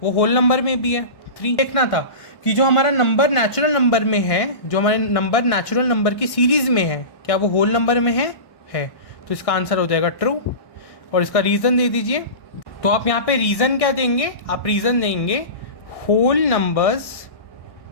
वो होल नंबर में भी है 3। देखना था कि जो हमारा नंबर नेचुरल नंबर में है, जो हमारे नंबर नेचुरल नंबर की सीरीज़ में है, क्या वो होल नंबर में है। तो इसका आंसर हो जाएगा ट्रू, और इसका रीज़न दे दीजिए। तो आप यहाँ पे रीज़न क्या देंगे, आप रीज़न देंगे whole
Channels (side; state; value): right; late; 1.1 ms